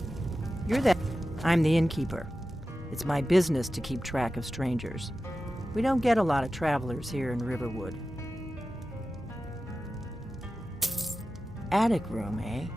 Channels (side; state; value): both; normal; correlation 0.93